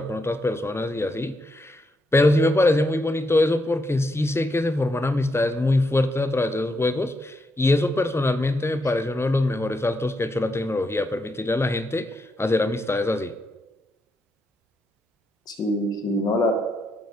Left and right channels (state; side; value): normal; both; correlation 0.81